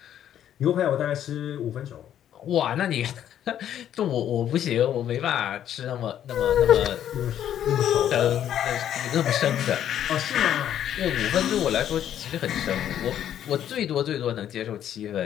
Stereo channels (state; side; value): quieter; right; 10.5 dB